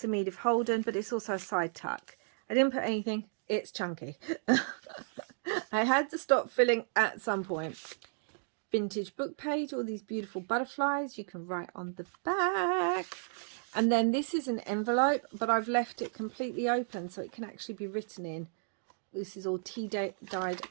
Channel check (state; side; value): silent; left; digital silence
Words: Edith Holden, but it's also a side tuck. I didn't put anything. It's chunky. I had to stop filling at some point. Vintage book page, all these beautiful butterflies. You can write on the back. And then this is an envelope, but I've left it completely open so it can actually be written in. This is all tea-dyed